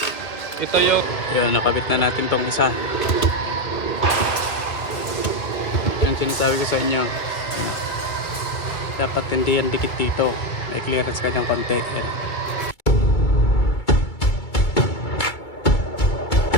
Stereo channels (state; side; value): late; right; 2.4 ms